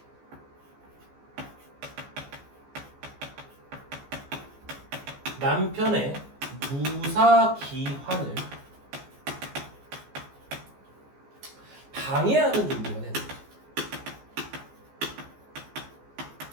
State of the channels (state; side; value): late; left; 14 ms